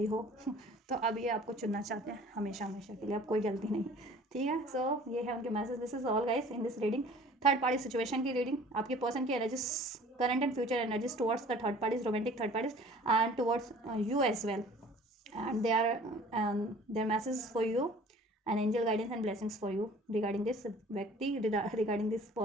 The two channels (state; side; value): normal; both; correlation 0.49